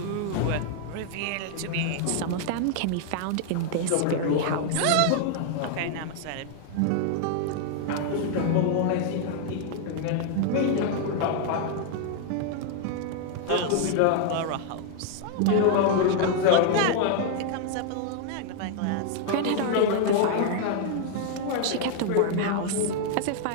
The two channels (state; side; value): different; both; correlation 0.00